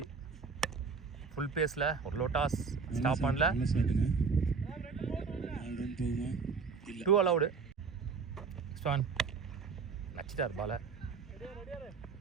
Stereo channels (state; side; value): quieter; left; 5.2 dB